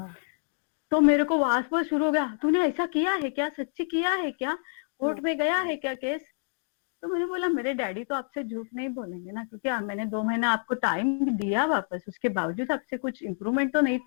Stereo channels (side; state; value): right; silent; digital silence